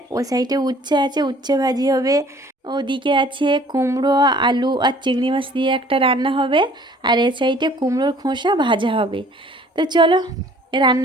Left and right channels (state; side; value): normal; both; correlation 0.53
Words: ও সাইডে উচ্ছে আছে, উচ্ছে ভাজি হবে। ওদিকে আছে কুমড়ো আলু আর চিংড়ি মাছ দিয়ে একটা রান্না হবে, আর এ সাইডে কুমড়োর খোসা ভাজা হবে। তো চলো